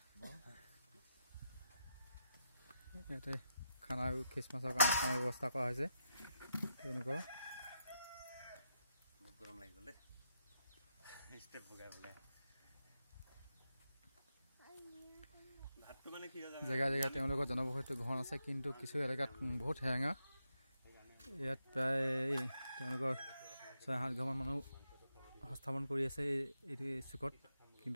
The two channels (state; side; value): inverted; both; correlation -0.84